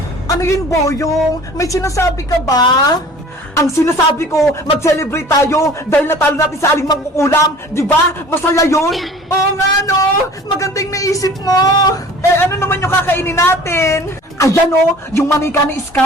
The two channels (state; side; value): normal; both; correlation 0.45